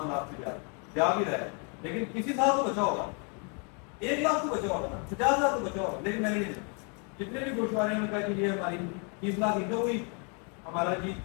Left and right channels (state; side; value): quieter; right; 37.3 dB